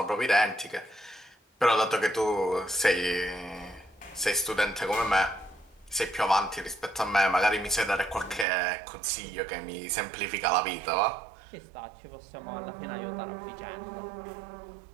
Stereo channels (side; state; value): left; drops out; at 8.5 s